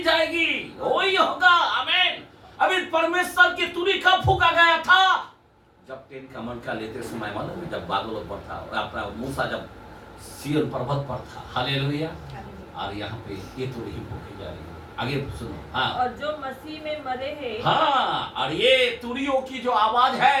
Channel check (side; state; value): both; identical; correlation 1.00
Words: जाएगी। वही होगा। आमीन। अभी परमेश्वर की तुरही कब फूका गया था? जब 10 कमांड का लेते समय, मालूम है, जब बादलों पर था, अपना मूसा जब सिय्योन पर्वत पर था। हालेलुया। और यहाँ पे ये तुरही फूकी जाएगी। आगे सुनो। हाँ, और जो मसीह में मरे हैं, हाँ, और ये तुरियों की जो आवाज